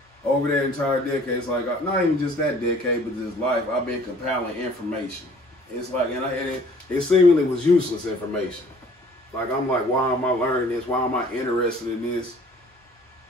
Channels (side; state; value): both; normal; correlation 0.54